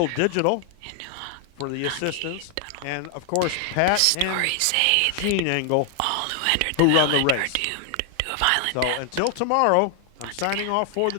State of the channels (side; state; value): both; different; correlation 0.00